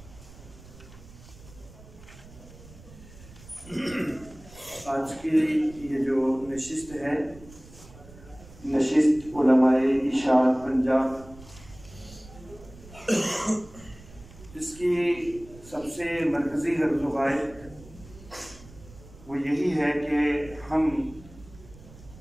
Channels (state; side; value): noise; right; rumble, 20 dB below the sound